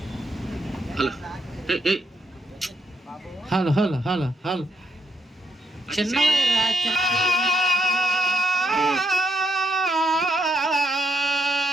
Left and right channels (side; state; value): both; normal; correlation 0.78